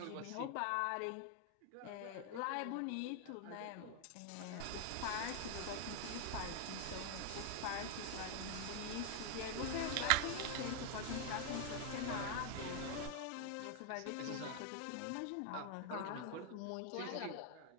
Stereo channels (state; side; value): different; both; correlation 0.00